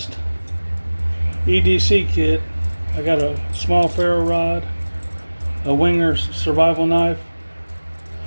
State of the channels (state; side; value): inverted; both; correlation -1.00